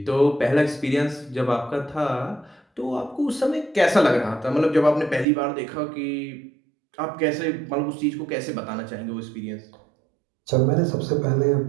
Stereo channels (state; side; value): drops out; left; at 5.2 s